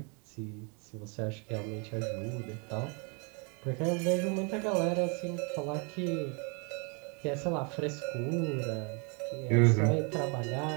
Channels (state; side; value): quieter; left; 34.7 dB